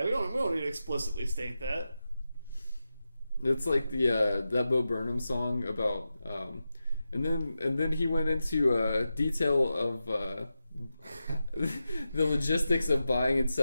we don't need to explicitly state that. It's like that Bo Burnham song about and then he went into detail of the logistics of buying and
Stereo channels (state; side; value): inverted; both; correlation -0.91